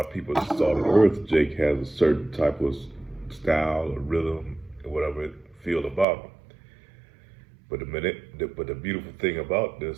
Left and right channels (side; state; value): left; drops out; at 6.1 s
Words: people that started earth, Jake has a certain type of style or rhythm or whatever it feel about him. But the beautiful thing about